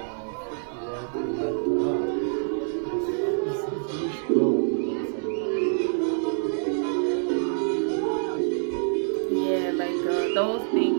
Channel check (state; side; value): silent; left; digital silence